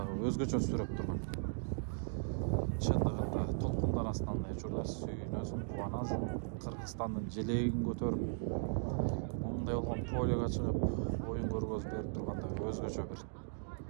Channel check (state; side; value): silent; left; digital silence